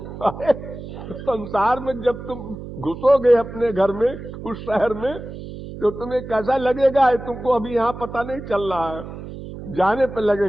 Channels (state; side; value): noise; right; hum, 11 dB below the sound